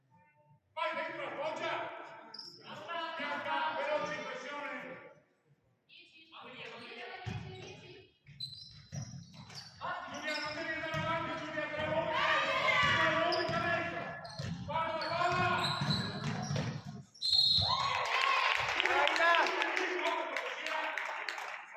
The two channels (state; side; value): identical; both; correlation 1.00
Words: Vai dentro la foggia. Bianca, veloce in pressione. Giulia, non devi andare avanti, Giulia, te la vuoi.